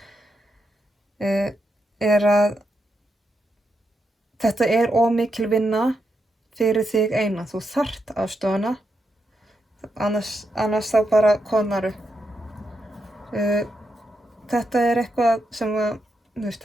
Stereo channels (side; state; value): both; normal; correlation 0.83